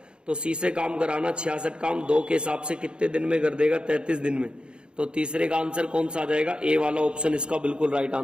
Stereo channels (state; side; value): late; left; 0.053 ms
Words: तो सी से काम कराना 66 काम 2 के हिसाब से कितने दिन में कर देगा 33 दिन में। तो तीसरे का आंसर कौन सा आ जाएगा, ए वाला ऑप्शन इसका बिल्कुल राइट